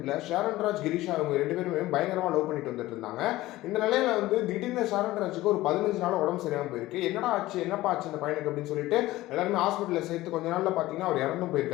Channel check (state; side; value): quieter; right; 17.1 dB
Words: ஷாரன்ராஜ் கிரீஷா அவங்க ரெண்டு பேருமே பயங்கரமாக லவ் பண்ணிட்டு வந்துட்டு இருந்தாங்க. இந்த நிலையில திடீர்னு ஷாரன்ராஜுக்கு ஒரு 15 நாள் உடம்பு சரியாமல் போயிருக்கு. என்னடா ஆச்சு, என்னப்பா ஆச்சு இந்த பையனுக்கு அப்படின்னு சொல்லிட்டு எல்லாருமே ஹாஸ்பிட்டலில் சேர்த்து கொஞ்ச நாளில் பார்த்தீங்கன்னா அவர் இறந்தும்